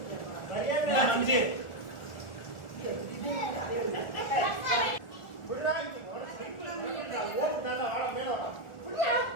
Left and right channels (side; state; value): right; late; 1.4 ms